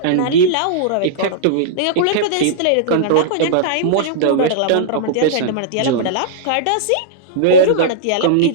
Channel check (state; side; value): different; both; correlation -0.02